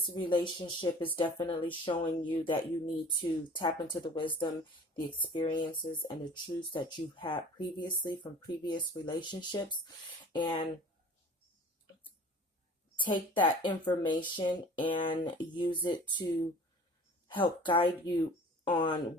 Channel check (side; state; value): both; normal; correlation 0.45